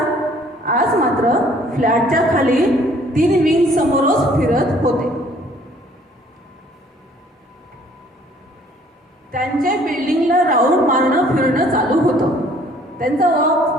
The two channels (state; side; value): normal; both; correlation 0.58